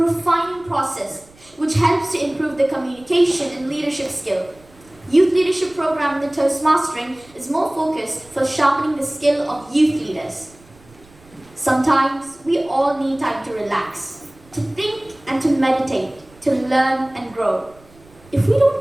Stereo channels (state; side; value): noise; right; rumble, 27 dB below the sound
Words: process which helps to improve the communication and leadership skill. Youth Leadership Program in the Toastmastering is more focused for sharpening the skill of youth leaders. Sometimes we all need time to relax, to think and to meditate, to learn and grow. If we don't